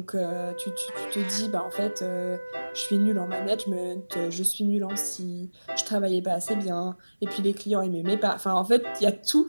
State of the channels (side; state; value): both; inverted; correlation -1.00